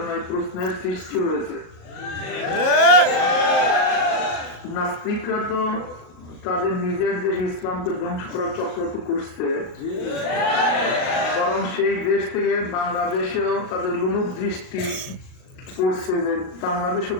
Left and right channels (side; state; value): right; late; 38 ms